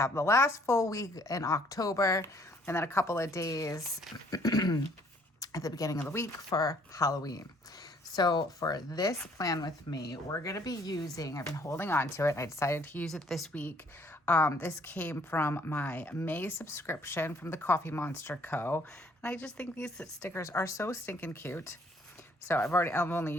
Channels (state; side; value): normal; both; correlation 0.62